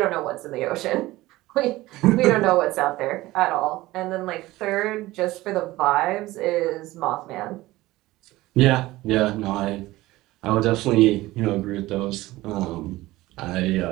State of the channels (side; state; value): left; quieter; 18.1 dB